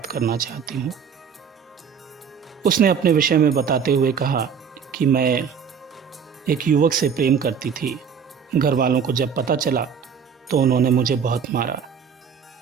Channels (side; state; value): left; quieter; 6.9 dB